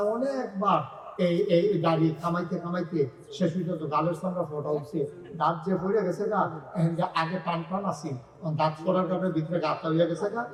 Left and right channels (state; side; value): identical; both; correlation 1.00